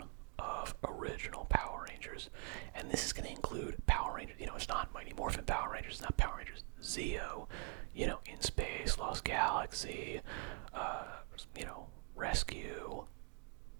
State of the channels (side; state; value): left; quieter; 30.4 dB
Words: of original Power Rangers. And this is going to include Power Rangers. It's not Mighty Morphin Power Rangers. It's not Power Rangers Zeo. In Space, Lost Galaxy, Rescue,